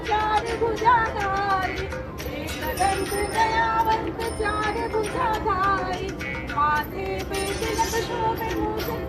चार भुजाधारी दंत दयावंत चार भुजाधारी माथे पे तिलक शोभे मूष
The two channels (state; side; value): identical; both; correlation 1.00